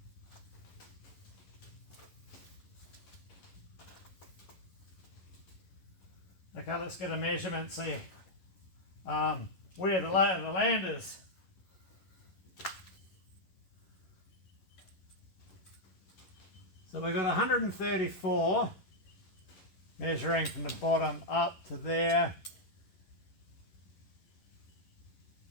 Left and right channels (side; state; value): right; late; 11 ms